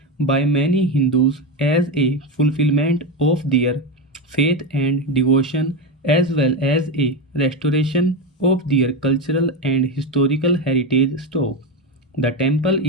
by many Hindus as a fulfillment of their faith and devotion as well as a restoration of their cultural and historical heritage. Stop. The temple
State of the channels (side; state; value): both; normal; correlation 0.15